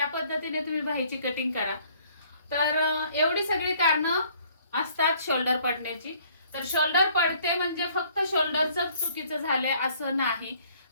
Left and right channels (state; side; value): inverted; both; correlation -0.60